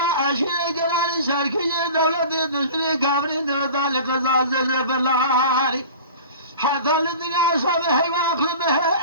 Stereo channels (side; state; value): both; inverted; correlation -0.39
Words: اشي قران شركي دولة دشري كامري ذلك زازل بلاري حتى الدنيا صبح